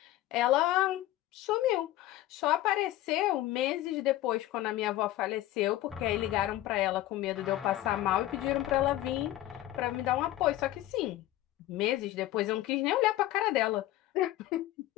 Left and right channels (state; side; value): quieter; right; 15.1 dB